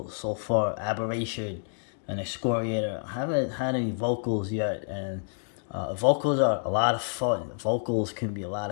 so far. Aberration and Excoriator. I haven't had any vocals yet, and vocals are a lot of fun. Vocals can be a lot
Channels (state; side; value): silent; right; 59 dB below the other